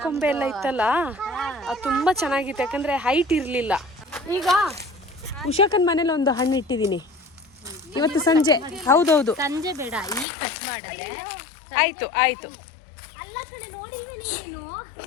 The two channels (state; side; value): drops out; right; at 10.2 s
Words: ಕೊಂಬೆ ಎಲ್ಲ ಇತ್ತಲ್ಲ, ಅದು ತುಂಬಾ ಚೆನ್ನಾಗಿತ್ತು. ಯಾಕಂದ್ರೆ ಹೈಟ್ ಇರ್ಲಿಲ್ಲ. ಈಗ ಉಷಾಕನ್ ಮನೇಲಿ ಒಂದು ಹಣ್ಣು ಇಟ್ಟಿದ್ದೀನಿ ಇವತ್ತು ಸಂಜೆ. ಹೌದೌದು, ಸಂಜೆ ಬೇಡ, ಈಗ ಕಟ್ ಮಾಡಿದ್ರೆ ಆಯ್ತು ಆಯ್ತು. ಅಲ್ಲ ಕಡೆ ನೋಡಿಲ್ವೇ ನೀನು?